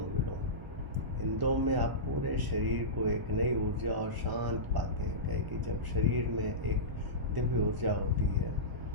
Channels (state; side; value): late; left; 1.0 ms